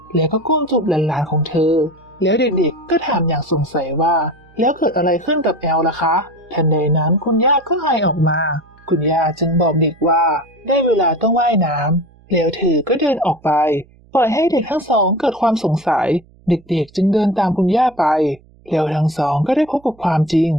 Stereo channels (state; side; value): noise; right; hum, 28 dB below the sound